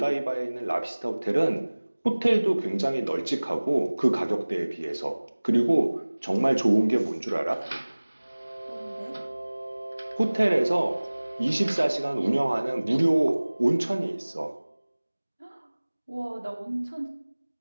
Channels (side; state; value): both; inverted; correlation -1.00